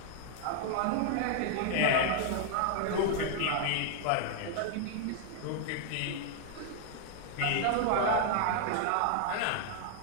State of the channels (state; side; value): different; both; correlation 0.00